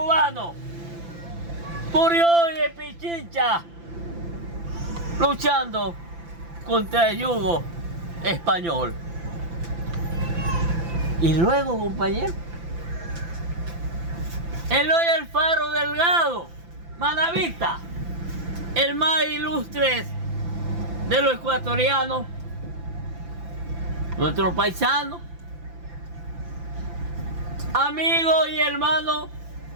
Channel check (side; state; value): left; late; 5.9 ms